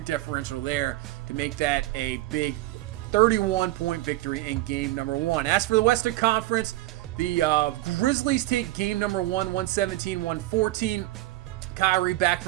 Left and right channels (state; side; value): quieter; left; 17.5 dB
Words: differential there to make that a big 31-point victory in game number 1. As for the Western Conference, the Grizzlies take game number 1, 117-114. Kyrie back